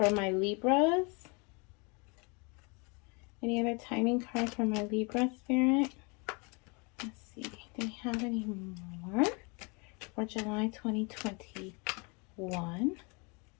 my Libras? Any other timing cards for my Libra, Spirit? Let's see. Do we have any more for July 2021?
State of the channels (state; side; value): quieter; right; 31.1 dB